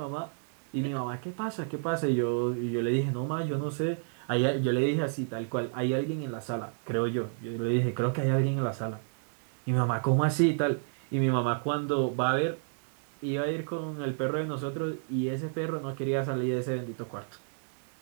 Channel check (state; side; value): silent; left; digital silence